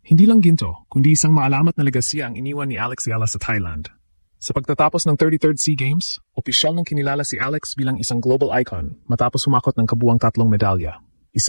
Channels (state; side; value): inverted; both; correlation -1.00